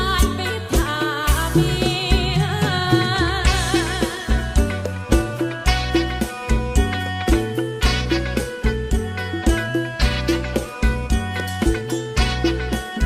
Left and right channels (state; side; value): identical; both; correlation 1.00